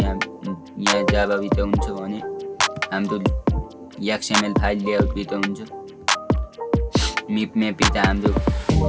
जाभा भित्र हुन्छ भने हाम्रो XML फाइल लेआउट भित्र हुन्छ। मिप म्याप भित्र हाम्रो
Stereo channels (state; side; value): identical; both; correlation 1.00